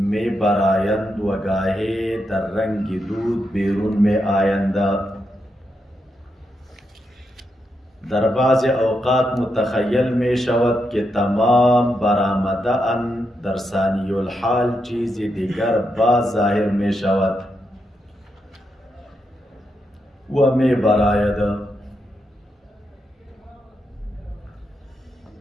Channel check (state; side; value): normal; both; correlation 0.83